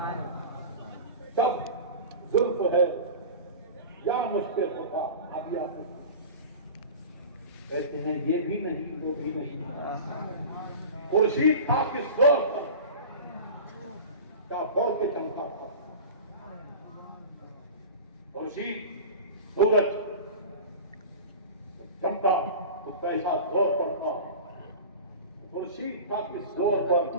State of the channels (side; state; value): both; inverted; correlation -0.34